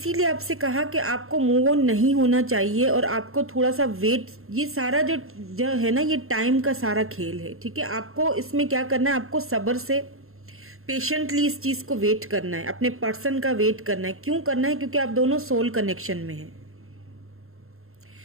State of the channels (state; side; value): late; left; 0.62 ms